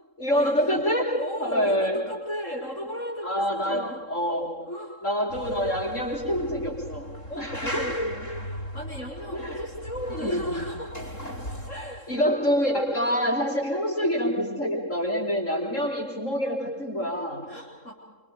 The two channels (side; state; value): right; late; 3.7 ms